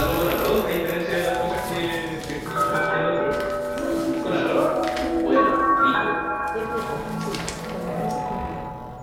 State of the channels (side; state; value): both; identical; correlation 1.00